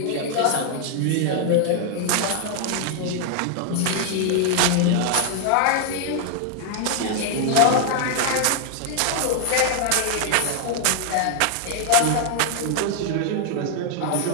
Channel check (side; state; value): both; different; correlation 0.00